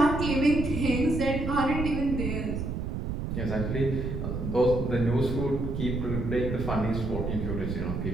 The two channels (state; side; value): noise; right; rumble, 3 dB below the sound